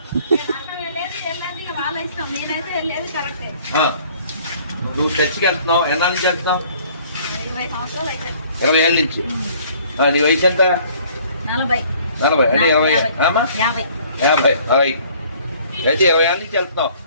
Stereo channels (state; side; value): inverted; both; correlation -0.56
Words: నువ్వు చర్చికి వెళ్తున్నావు, ఎన్నాళ్ళ నుంచి వెళ్తున్నావు? 20 ఏళ్ళ నుంచి. నీ వయసు ఎంత? 40 అంటే 50 అయితే 20 ఏళ్ళ నుంచి వెళ్తున్నావు.